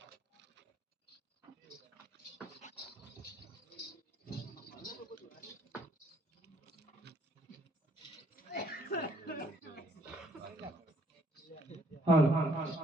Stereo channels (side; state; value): both; normal; correlation 0.65